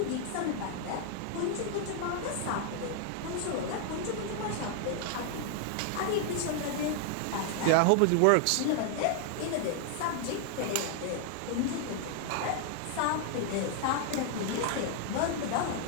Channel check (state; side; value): different; both; correlation 0.00